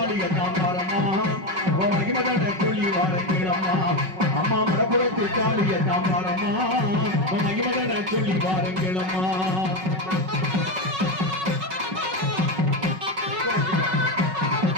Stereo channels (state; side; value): late; left; 5.4 ms